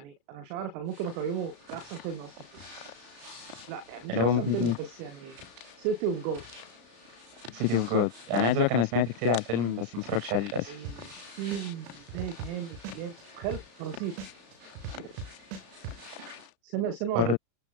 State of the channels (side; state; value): left; late; 35 ms